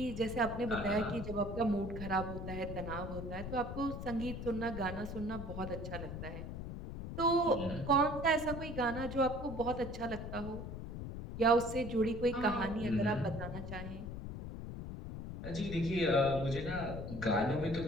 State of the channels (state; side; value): noise; left; rumble, 7 dB below the sound